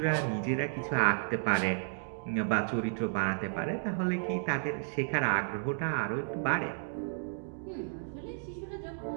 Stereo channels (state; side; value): silent; left; digital silence